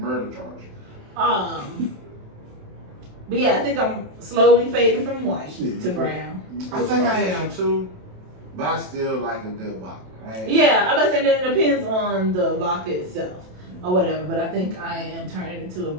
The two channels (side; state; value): left; late; 27 ms